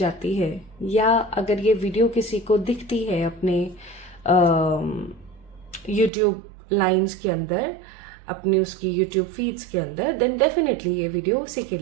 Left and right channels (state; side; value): drops out; left; at 6.1 s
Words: है या अगर ये वीडियो किसी को दिखती है अपने यूट्यूब लाइंस के अंदर, अपनी उसकी यूट्यूब फीड्स के अंदर, देन डेफिनेटली ये वीडियो उसी के